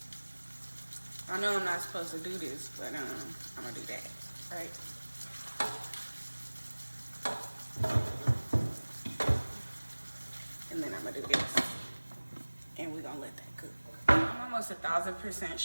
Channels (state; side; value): inverted; both; correlation -1.00